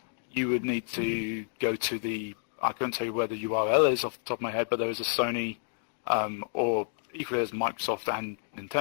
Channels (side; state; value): right; silent; digital silence